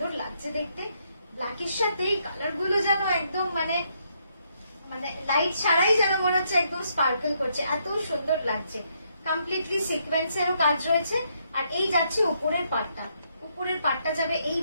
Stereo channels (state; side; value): inverted; both; correlation -0.75